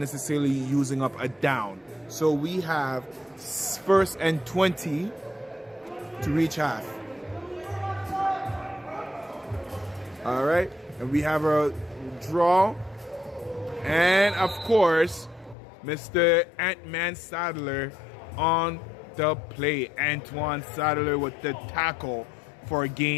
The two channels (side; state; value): right; drops out; at 15.6 s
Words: using up a down. So we have 1st and 20 to reach half. All right, and we have a draw, and of course, Mr. Ant-Man Sadler on the play. Antoine Sadler with the tackle for a